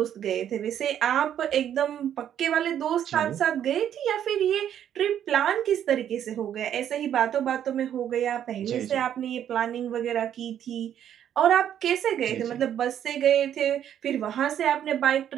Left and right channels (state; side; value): quieter; left; 10.0 dB